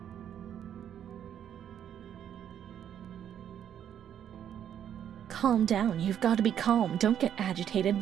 Calm down. You've got to be calm. Don't get agitated.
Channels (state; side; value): quieter; left; 9.6 dB